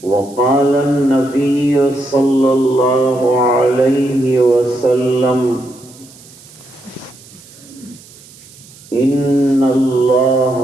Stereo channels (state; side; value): noise; right; hiss, 23 dB below the sound